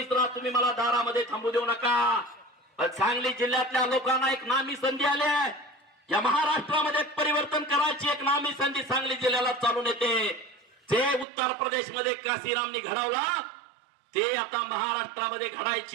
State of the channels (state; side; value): drops out; left; at 11.2 s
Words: ला तुम्ही मला दारामध्ये थांबू देऊ नका. सांगली जिल्ह्यातल्या लोकांना एक नामी संधी आली आहे. या महाराष्ट्रामध्ये परिवर्तन करायची एक नामी संधी सांगली जिल्ह्याला चालून येते. जे उत्तर प्रदेशमध्ये काशीरामनी घडवला ते आता महाराष्ट्रामध्ये